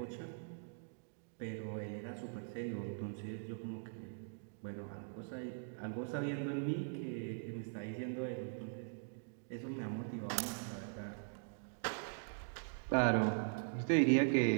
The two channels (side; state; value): left; silent; digital silence